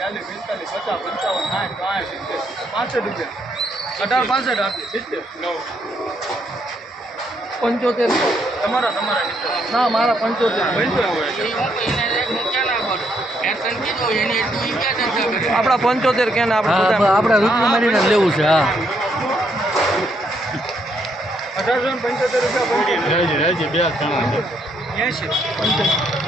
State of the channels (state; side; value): normal; both; correlation 0.73